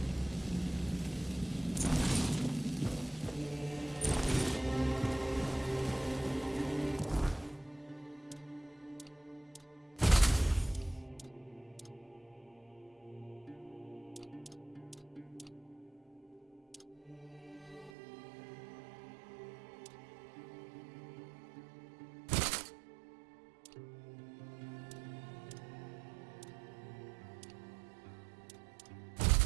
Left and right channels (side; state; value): left; drops out; at 17.9 s